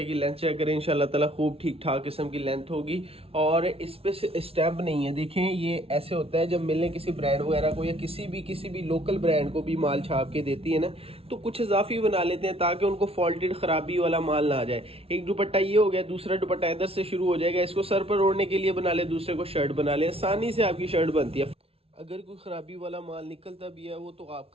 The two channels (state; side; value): late; left; 0.28 ms